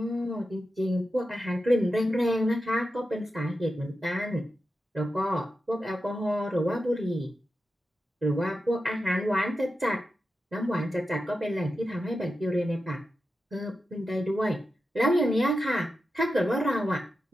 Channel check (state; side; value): normal; both; correlation 0.90